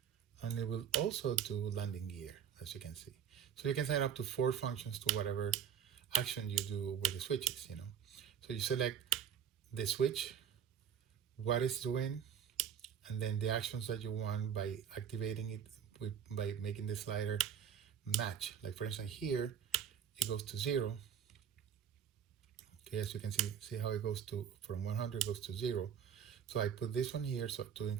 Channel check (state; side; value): quieter; left; 8.3 dB